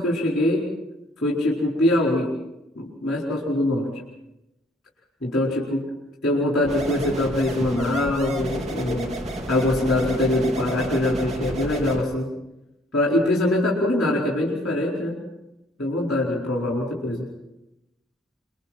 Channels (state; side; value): normal; both; correlation 0.60